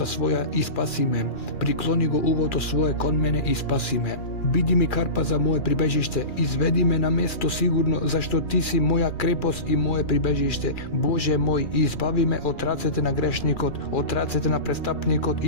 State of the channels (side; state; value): right; late; 2.4 ms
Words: своја и спаси ме. Приклони го увото свое кон мене и спаси ме. Биди ми карпа за мое прибежиште, изведи ме на место сигурно, зашто Ти си моја крепост и мое прибежиште. Боже мој, избави ме од рацете на грешникот, од рацете на престапникот